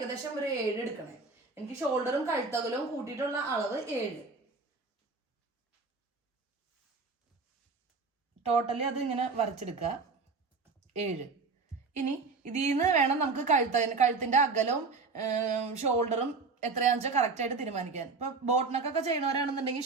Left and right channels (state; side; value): quieter; left; 4.3 dB